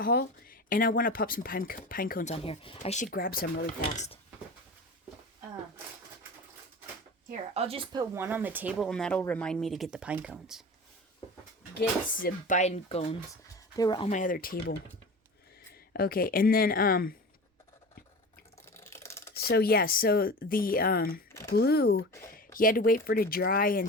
and I want to pop some pine cones on here. I should grab some really fast. Here, I'll just put one on the table, and that'll remind me to get the pine cones. Get the pine cones. They were on my other table. Okay, and then, so the, glue, you had to wait for it to dry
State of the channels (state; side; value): normal; both; correlation 0.33